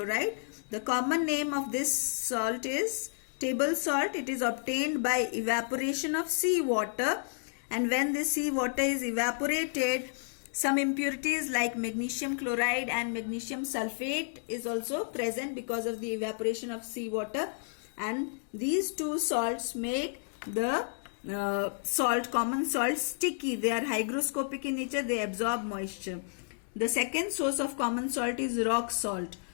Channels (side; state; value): right; silent; digital silence